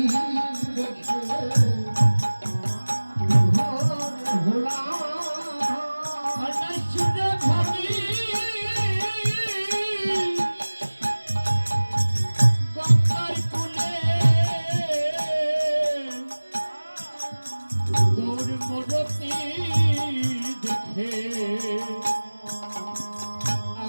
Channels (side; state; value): both; inverted; correlation -1.00